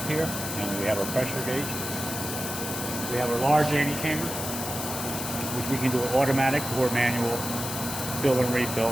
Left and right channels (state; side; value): noise; left; hiss, 5 dB below the sound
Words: here, and we have our pressure gauge. We have our large antechamber, which we can do automatic or manual fill and refill.